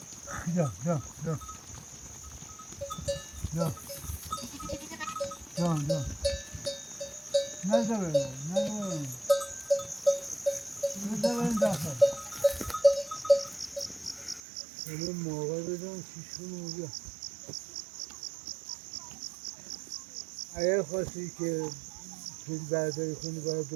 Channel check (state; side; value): drops out; left; at 14.4 s